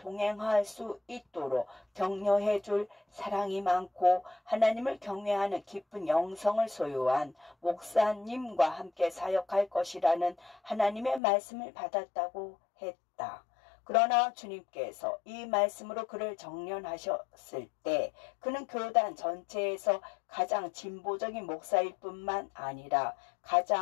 수 있도록 격려해 줄 사랑이 많고 하나님을 경외하는 깊은 영성을 소유한 목사님과 함께 사역할 것이라는 하나님의 말씀을 받았다고 했다. 그러나 주님께서 이 말씀으로 그를 정련하셨을 때 그는 교단 전체에서 가장 진보적인 목사일 뿐만 아니라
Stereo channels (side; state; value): right; drops out; at 11.2 s